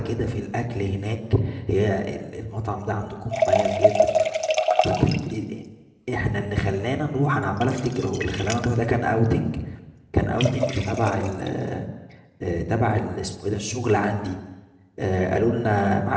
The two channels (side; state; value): both; identical; correlation 1.00